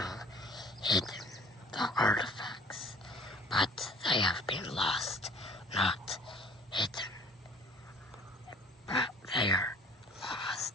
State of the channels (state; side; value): normal; both; correlation 0.53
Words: hidden, the artifacts, but they have been lost, not hidden. But they are